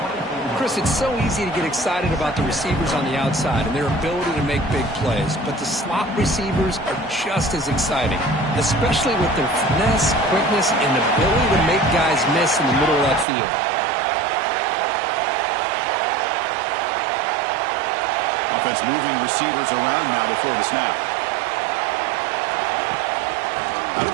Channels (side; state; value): left; drops out; at 13.2 s